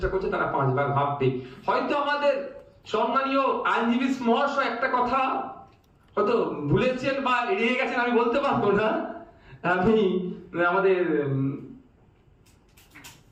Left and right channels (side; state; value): both; identical; correlation 1.00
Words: করছে তারা 5 বার ভাববে। হয়তো আমাদের সম্মানীয় আইনজীবী মহাশয় একটা কথা হয়তো ভুলেছেন বা এড়িয়ে গেছেন, আমি বলতে পারবো না। আমি আমাদের